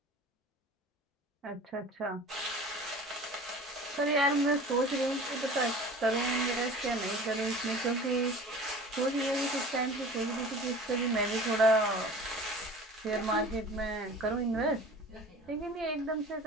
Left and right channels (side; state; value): both; normal; correlation 0.41